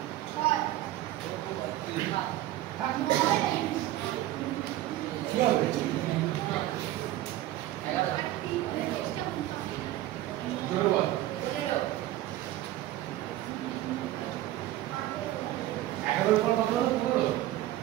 4, কি হবে? 11 পর কত হলো?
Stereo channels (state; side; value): quieter; left; 14.8 dB